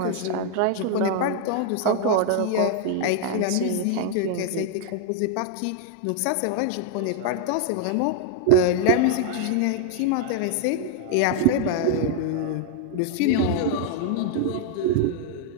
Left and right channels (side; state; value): both; different; correlation 0.00